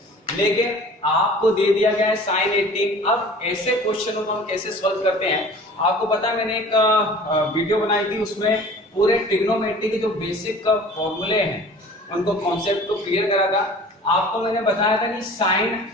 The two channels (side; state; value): both; normal; correlation 0.45